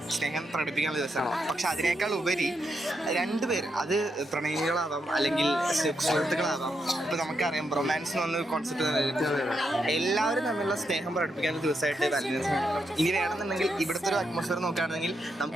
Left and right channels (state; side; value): normal; both; correlation 0.82